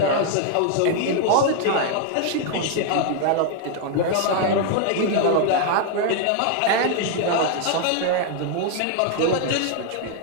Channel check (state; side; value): different; both; correlation 0.00